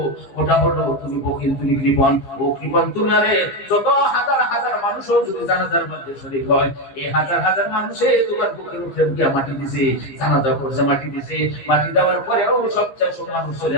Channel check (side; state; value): right; late; 15 ms